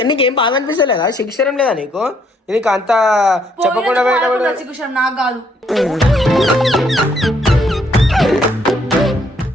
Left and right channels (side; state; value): both; normal; correlation 0.68